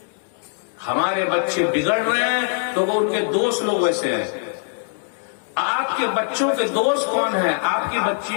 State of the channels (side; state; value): right; silent; digital silence